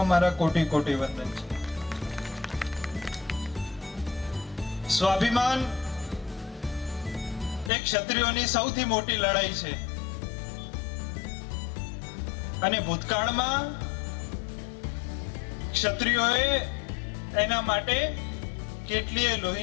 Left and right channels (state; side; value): drops out; right; at 7.7 s